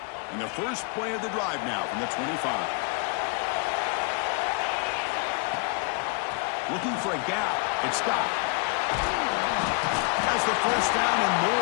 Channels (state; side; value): quieter; right; 33.9 dB